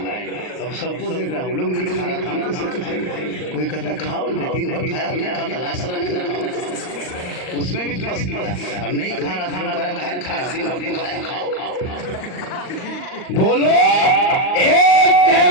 अब सबको देख रहा हूँ लोग नहीं खा रहा, हम कैसे खाएंगे, कोई कहता खाओ, दिन भर खाया नहीं खाता, लाशरा नहीं खाओ, उसमें भी फंस गया और नहीं खा रहा था, खा रहा दिन भर खाया, खाओ। बोलो एक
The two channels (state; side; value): late; right; 39 ms